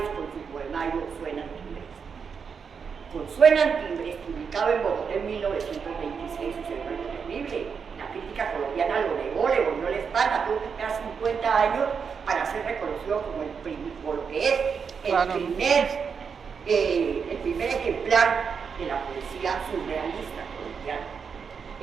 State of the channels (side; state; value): left; quieter; 6.2 dB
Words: con su poemario Suenan Timbres. Con Suenan Timbres, publicado en Bogotá en 1926, sucedió algo terrible. La crítica colombiana lo negó, le volvió la espalda, tuvo que esperar 50 años para ser reconocido como lo que es el primer ejemplar de la poesía surrealista colombiana.